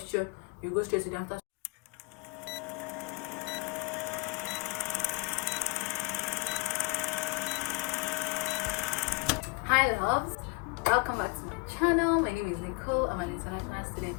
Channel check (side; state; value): right; quieter; 29.1 dB